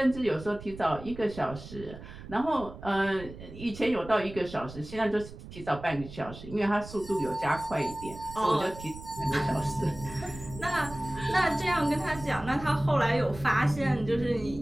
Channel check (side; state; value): right; noise; rumble, 14 dB below the sound